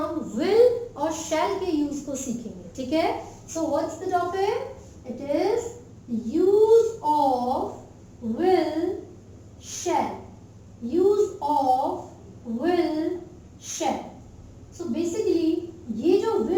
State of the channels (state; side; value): identical; both; correlation 1.00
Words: विल और शैल के यूज को सीखेंगे। ठीक है, so what's the topic? It is use of will shell. Use of will shell. So basically ये जो